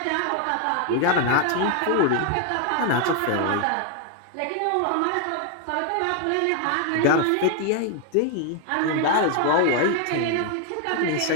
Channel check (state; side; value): different; both; correlation 0.00